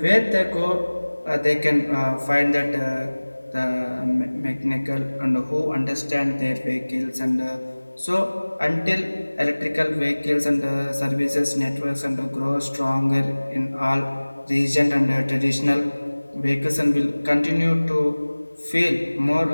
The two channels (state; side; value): inverted; both; correlation -1.00